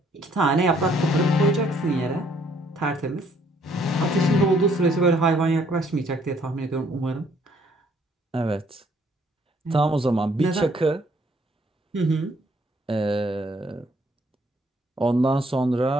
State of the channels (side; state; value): both; normal; correlation 0.65